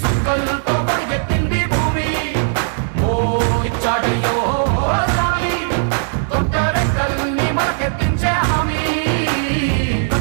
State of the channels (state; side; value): silent; left; digital silence